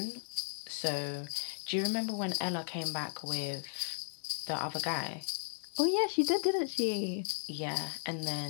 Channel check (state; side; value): silent; right; 54 dB below the other